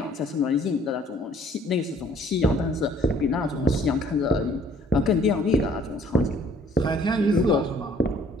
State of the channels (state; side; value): normal; both; correlation 0.58